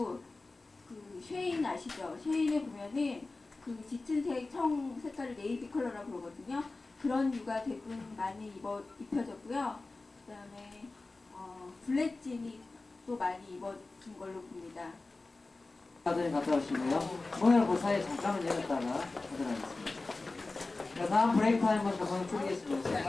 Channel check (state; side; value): quieter; right; 3.4 dB